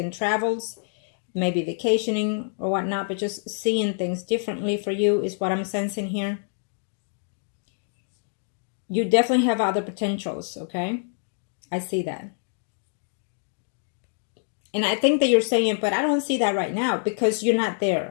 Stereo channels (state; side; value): silent; right; digital silence